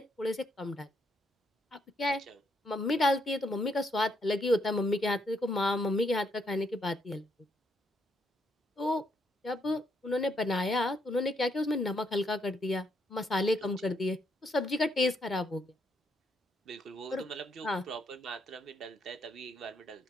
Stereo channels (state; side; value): normal; both; correlation 0.75